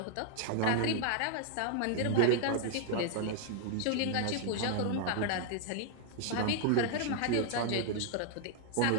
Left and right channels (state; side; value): different; both; correlation 0.00